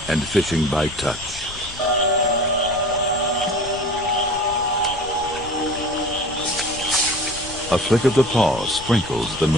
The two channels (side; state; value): left; noise; rumble, 16 dB below the sound